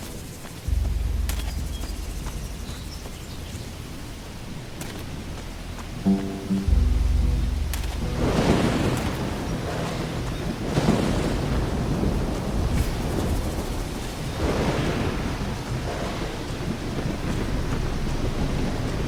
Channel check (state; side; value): identical; both; correlation 1.00